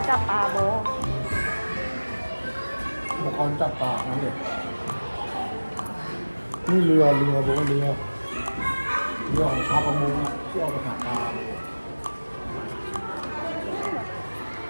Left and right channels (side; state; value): both; inverted; correlation -1.00